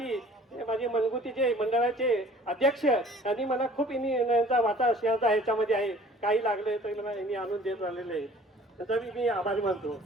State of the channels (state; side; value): normal; both; correlation 0.50